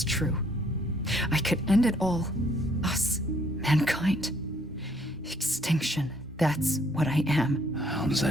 true. I could end it all. Us. Mankind. Extinction. That's what I am. How does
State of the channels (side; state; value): both; normal; correlation 0.65